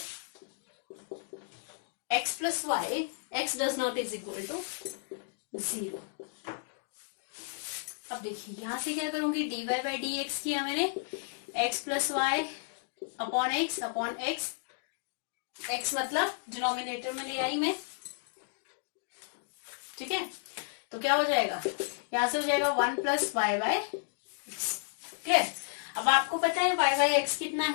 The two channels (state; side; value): silent; right; digital silence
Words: x does not is equal to 0। अब देखिए यहां से क्या करूंगी, dy by dx किया मैंने, x plus y upon x x मतलब डिनोमिनेटर में ले आई मैं, ठीक है। तो क्या हो जाएगा, यहां से हो जाएगा 1 plus y by x. Clear. अब आपको पता है y बाय एक्स कितना